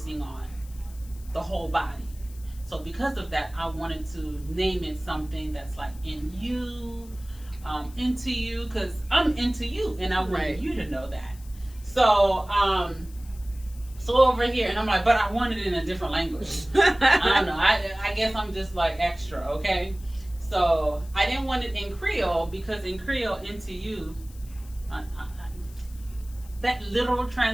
on the whole body. So because of that, I wanted to name it something that's like in you, into you, because I'm into you, and I want Right. you to know that. So over here, and I'm like, but I want it in a different language. I don't know. I guess I'm just like extra, okay? So I didn't want it in Creole because in Creole, into you, that literal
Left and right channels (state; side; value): noise; left; hiss, 23 dB below the sound